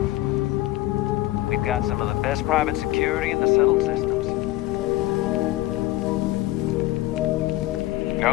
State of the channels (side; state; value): right; quieter; 17.0 dB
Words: got some of the best private security in the settled systems.